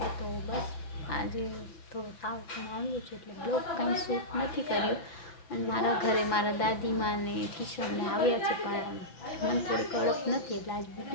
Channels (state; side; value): late; right; 5.9 ms